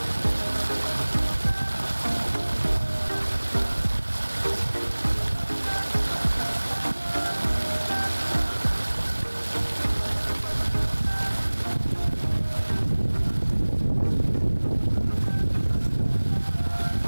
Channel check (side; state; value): both; inverted; correlation -1.00